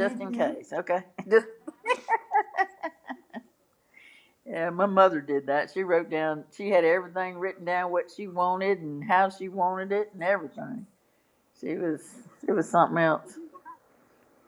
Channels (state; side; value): identical; both; correlation 1.00